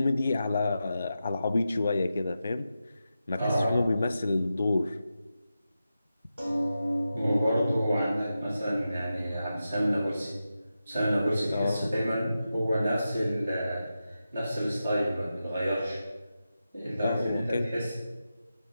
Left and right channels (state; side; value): inverted; both; correlation -0.90